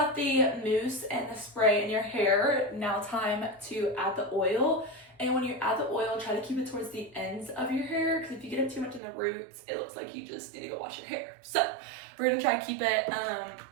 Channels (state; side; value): drops out; left; at 9.0 s